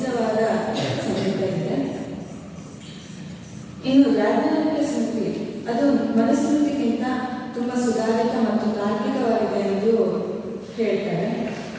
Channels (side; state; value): both; identical; correlation 1.00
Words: ಸಂಗೀತ ಇದೆ. ಇನ್ನು ಯಾಜ್ಞವಲ್ಕ್ಯ ಸ್ಮೃತಿ ಅದು ಮನುಸ್ಮೃತಿಗಿಂತ ತುಂಬ ಸುಧಾರಿತ ಮತ್ತು ತಾರ್ಕಿಕವಾಗಿದೆ ಎಂದು ಹೇಳ್ತಾರೆ.